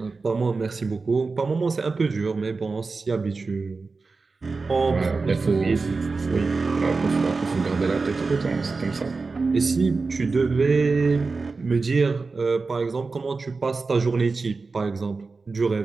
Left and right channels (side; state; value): left; quieter; 4.1 dB